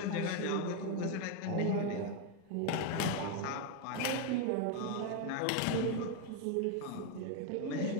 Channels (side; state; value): both; different; correlation 0.01